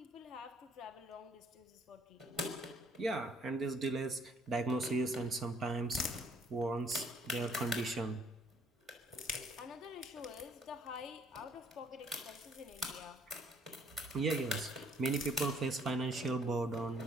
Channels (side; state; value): both; normal; correlation 0.63